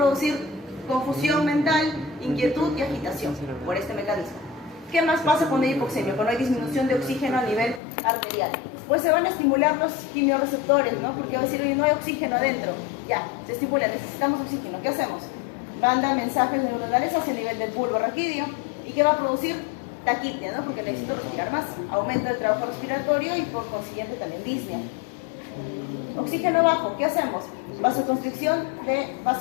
confusión mental, inquietud y agitación por este mecanismo. ¿Qué más pasa cuando hay hipoxemia? Cuando hay disminución de oxígeno a nivel arterial. Pues se van a estimular los quimiorreceptores, ¿no? Porque va a decir, oye, no hay oxígeno adentro. Ya, se estimula, necesitamos oxígeno. ¿Qué hacemos? Manda mensajes neuronales hacia el nivel del bulbo raquídeo. ¿Y qué va a producir? Taquipnea, ¿no? Porque necesito respirar más. Aumento del trabajo respiratorio y por consiguiente también disnea. Oxígeno bajo, ¿qué hacemos? Vasoconstricción de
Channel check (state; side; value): drops out; right; at 7.8 s